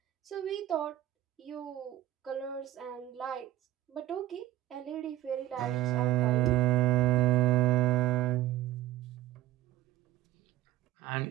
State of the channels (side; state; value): left; quieter; 14.6 dB